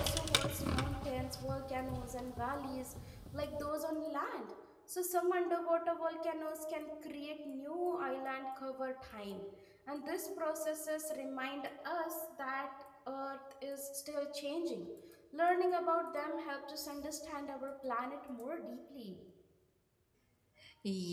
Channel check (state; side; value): identical; both; correlation 1.00